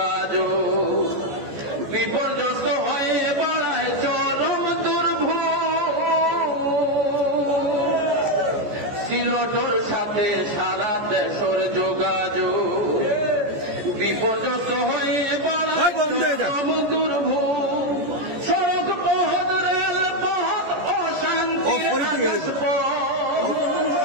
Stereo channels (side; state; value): left; late; 14 ms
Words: বিপর্যস্ত হয়ে বাড়ায় চরম দুর্ভোগ সিলটর সাথে সারা দেশের যোগাযোগ বিপর্যস্ত হয়ে বাড়ায় চরম দুর্ভোগ সড়ক পথ রেল পথ অশান্তি